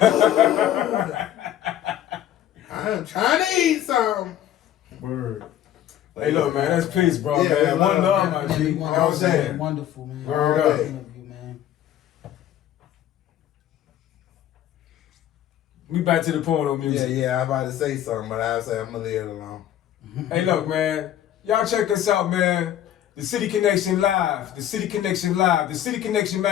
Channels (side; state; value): right; quieter; 11.5 dB